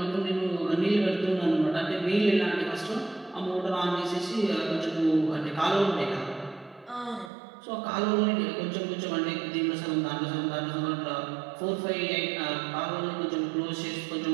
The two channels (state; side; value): drops out; left; at 7.3 s